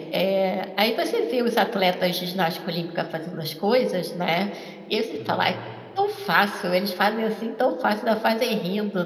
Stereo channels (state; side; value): identical; both; correlation 1.00